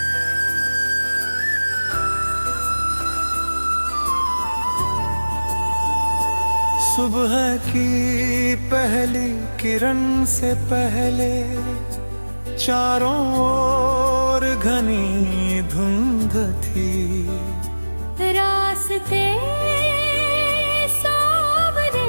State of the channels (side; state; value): both; inverted; correlation -1.00